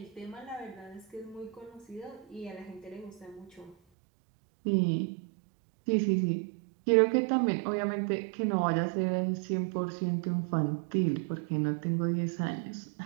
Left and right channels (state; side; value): drops out; left; at 3.8 s